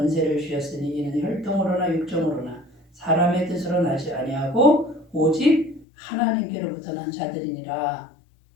주셨으니 이는 혈통으로나 육정으로나 사람의 뜻으로 나지 아니하고 오직 하나님께로부터 난 자들이니라.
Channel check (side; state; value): right; drops out; at 5.9 s